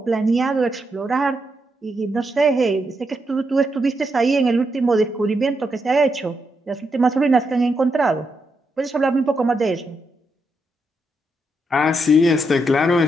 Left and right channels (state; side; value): normal; both; correlation 0.82